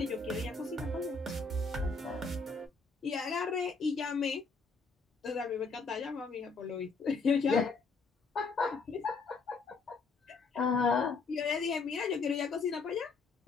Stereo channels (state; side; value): quieter; right; 4.3 dB